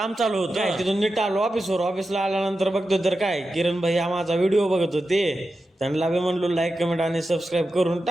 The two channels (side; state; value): both; normal; correlation 0.91